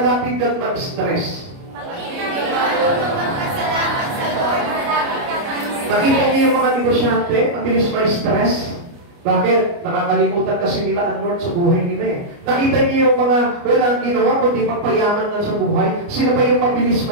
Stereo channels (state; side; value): late; left; 29 ms